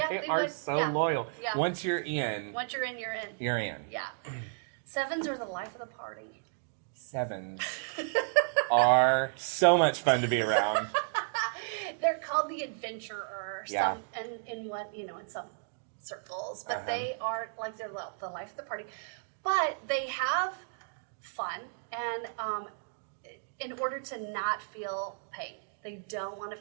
they they are would. so Yeah. loyal. Yeah. Once you're in, Once you're in, you're in. you're in. Yeah. 7s are the life of the party. 7s are so much fun to be around. They're called the adventurer. Yeah. In some circles, but they are like they're the life of the party. But they have fun, and in order to not feel pain, they don't want to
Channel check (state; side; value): silent; left; digital silence